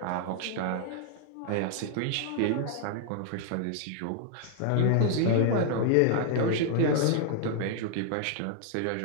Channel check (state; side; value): different; both; correlation -0.01